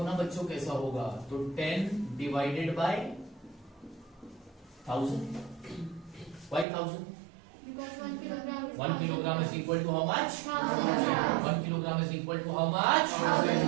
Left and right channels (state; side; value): drops out; left; at 6.7 s